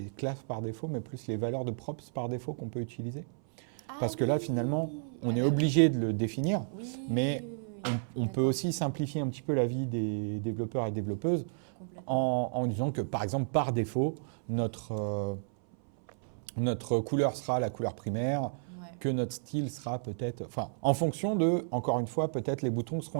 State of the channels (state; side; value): silent; left; 56 dB below the other